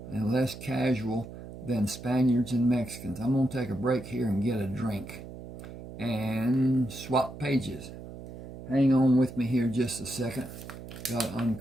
and less casual than Spaniards and Mexicans. I'm going to take a break here and get a drink and swap pages. Hang on with me here just a second. Got to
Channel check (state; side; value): noise; right; hum, 13 dB below the sound